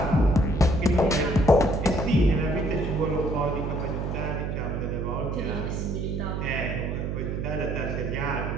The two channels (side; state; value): right; noise; hum, 2 dB below the sound